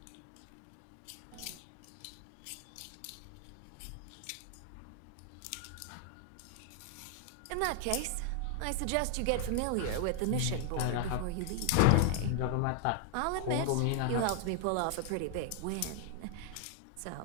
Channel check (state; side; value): different; both; correlation 0.00